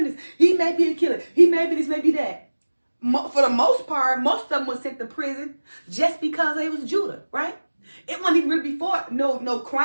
he may be a killer. He may be this, may be that. For the most part, most of them were sent to prison just because they was Judah, right? It wasn't even really before no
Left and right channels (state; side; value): inverted; both; correlation -1.00